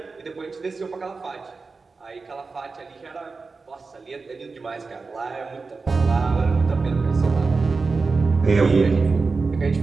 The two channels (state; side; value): quieter; left; 4.2 dB